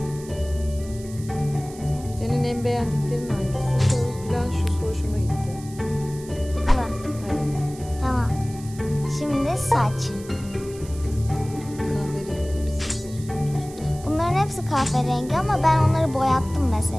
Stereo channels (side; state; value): right; noise; hiss, 19 dB below the sound